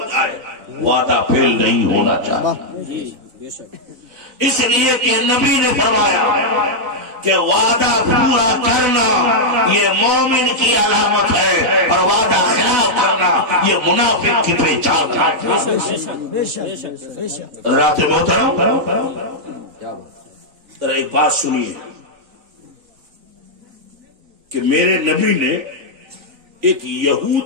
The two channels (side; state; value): left; late; 4.0 ms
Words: جائے، وعدہ فیل نہیں ہونا چاہیے، اس لیے کہ نبی نے فرمایا کہ وعدہ پورا کرنا یہ مومن کی علامت ہے، اور وعدہ خلاف کرنا یہ منافق کی پہچان ہے۔ حضرات محترم، ذرا ایک بات سنیے کہ میرے نبی نے ایک